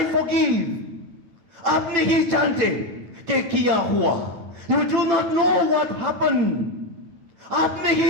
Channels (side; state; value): left; late; 8.9 ms